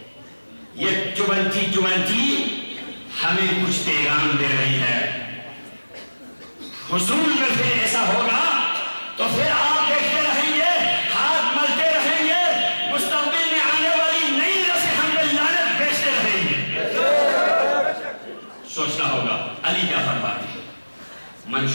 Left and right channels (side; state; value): both; inverted; correlation -1.00